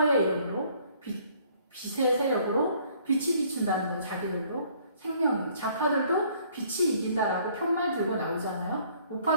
이름으로 빛의 세력으로 빛이 비춘다는 건 자기들도 생명이 자파들도 빛이 이긴다라고 편말 들고 나오잖아요.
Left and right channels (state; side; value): inverted; both; correlation -0.60